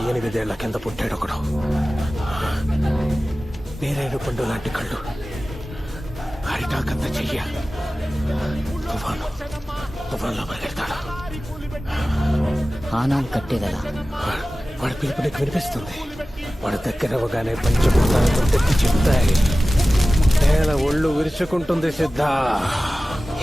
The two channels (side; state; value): both; normal; correlation 0.96